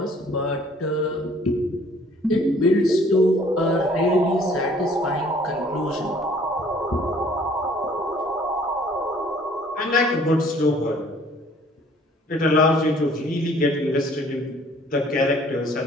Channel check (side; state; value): both; normal; correlation 0.56